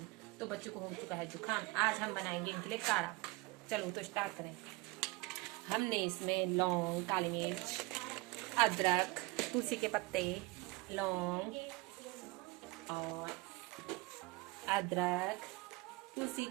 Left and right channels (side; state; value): left; quieter; 23.0 dB